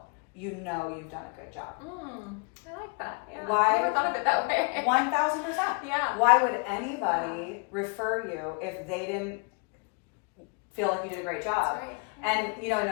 you know you've done a good job. I like that. Why? I never thought of it that way. 1000%. Why would anybody refer you if they didn't feel like you did a great job? And you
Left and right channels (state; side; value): quieter; right; 35.7 dB